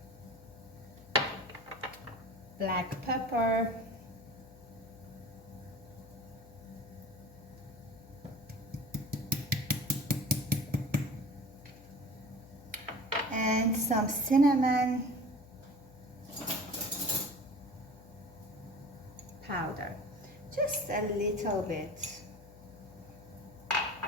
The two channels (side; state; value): left; noise; hum, 21 dB below the sound